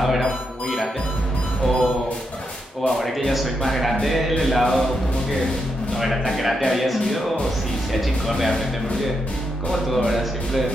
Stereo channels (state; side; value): normal; both; correlation 0.82